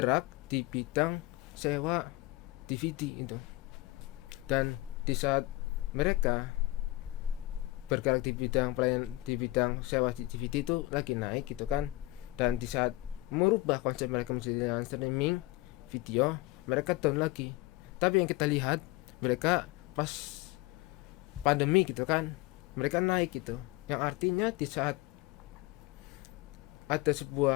di bidang sewa DVD itu. Dan di saat mereka bergerak di bidang sewa DVD itu lagi naik gitu kan, dan di saat merubah konsep mereka menjadi streaming video, mereka down lagi. Tapi yang kita lihat, mereka pas pandemi gitu kan, mereka naik gitu. Yang artinya di saat ada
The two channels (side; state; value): right; quieter; 19.6 dB